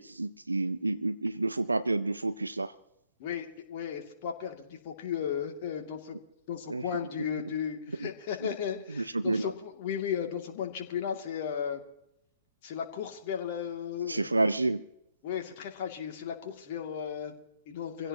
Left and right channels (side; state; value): both; inverted; correlation -0.70